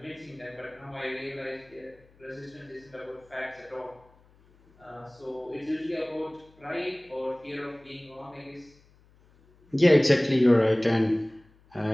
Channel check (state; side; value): noise; left; hum, 30 dB below the sound